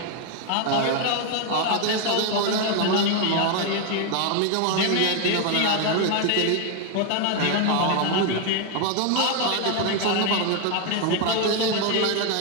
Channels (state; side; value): different; both; correlation 0.01